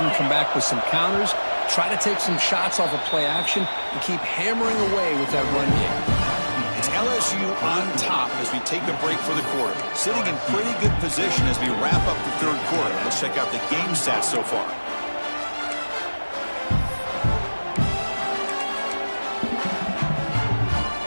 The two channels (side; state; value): both; inverted; correlation -1.00